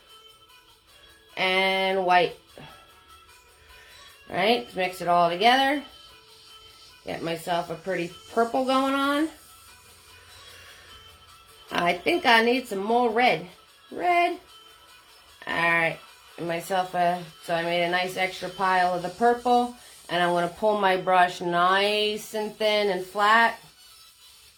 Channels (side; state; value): both; identical; correlation 1.00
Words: and white. Alright, let's mix it all together. Get myself a pretty purple going on. I think I need some more red. Red. Alright, myself so I made a nice extra pile of the purple. And I'm going to pull my brush nice and thin and flat.